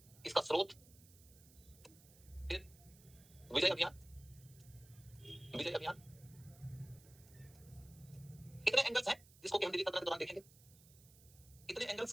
इसका स्रोत, फिर विजय अभियान, विजय अभियान। इतने एंगल्स हैं जिसको कि हम दिल्ली सल्तनत के दौरान देखेंगे। इतने एंगल्स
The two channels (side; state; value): right; noise; hiss, 23 dB below the sound